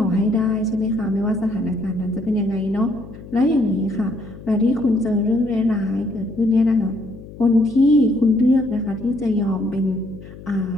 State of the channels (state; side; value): noise; left; hum, 16 dB below the sound